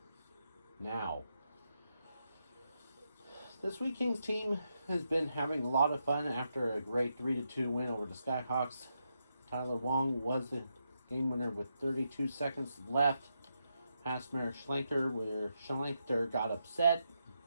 now. This Weeking's team has been having a lot of fun after a great 3-2 win over the Skyhawks. Tyler Wong was the game winner with 32 seconds left. Past Merrick Schlenker, where Schlenker got upset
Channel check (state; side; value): inverted; both; correlation -0.83